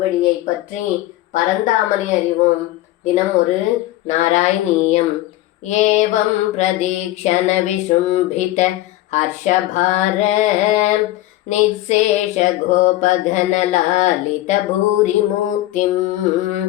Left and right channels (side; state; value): right; quieter; 16.0 dB